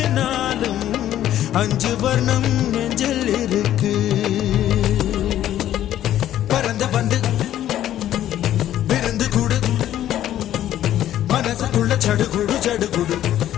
5 வர்ணம் நெஞ்சில் இருக்கு. பறந்து வந்து விருந்து கூடு, மனசுக்குள்ள சடுகுடு சடுகுடு,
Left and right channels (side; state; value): right; quieter; 12.1 dB